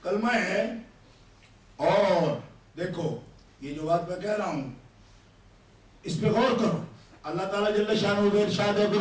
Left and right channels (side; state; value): both; identical; correlation 1.00